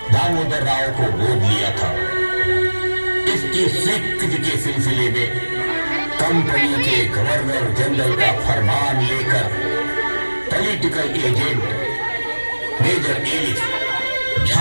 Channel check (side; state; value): both; inverted; correlation -1.00